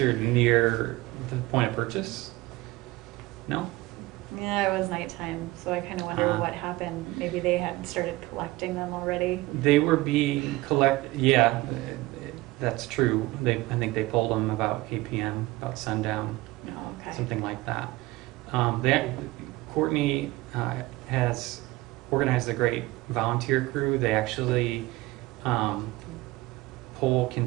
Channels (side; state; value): left; quieter; 19.6 dB